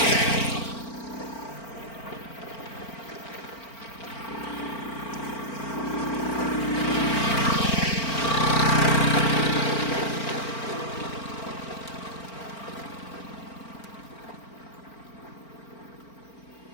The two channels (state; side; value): late; right; 4.4 ms